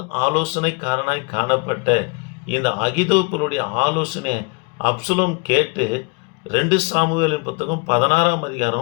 ஆலோசனைக்காரனாய் காணப்பட்ட இந்த அகிதோப்பலுடைய ஆலோசனையை அப்சலோம் கேட்டு 2 சாமுவேலின் புத்தகம் 16ஆம்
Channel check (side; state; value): right; quieter; 31.3 dB